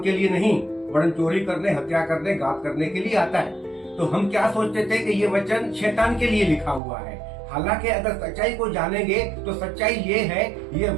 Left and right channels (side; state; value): left; drops out; at 6.8 s